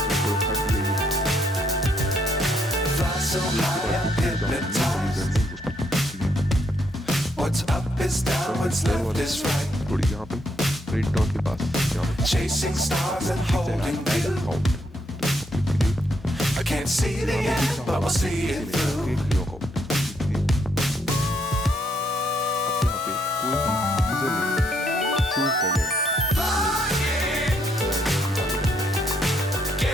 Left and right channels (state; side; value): normal; both; correlation 0.74